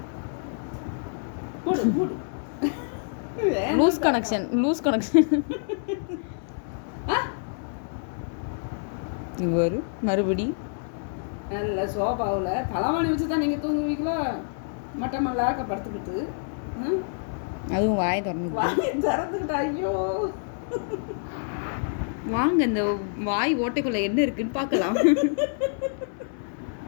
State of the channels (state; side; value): silent; right; digital silence